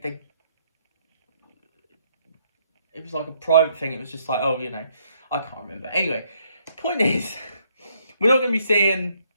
was like a private thing. It was just like, I can't remember. Anyway, the point is, we're not going to be seeing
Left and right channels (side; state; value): both; inverted; correlation -0.71